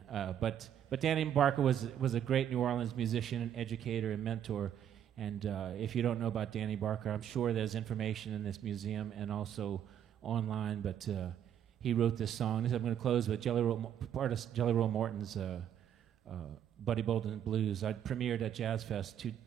but Danny Barker was a great New Orleans musician and educator and mentor. And if you don't know about Danny Barker, I'm sure there's information in this museum and also online. But he wrote this song. I'm going to close with Jelly Roll Morton's Buddy Bolden Blues. I premiered at Jazz Fest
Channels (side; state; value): left; quieter; 9.7 dB